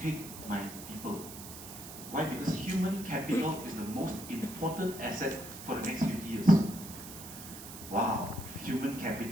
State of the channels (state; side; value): noise; right; hiss, 12 dB below the sound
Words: my people. Why? Because human capital is the most important asset for the next 50 years. Wow, human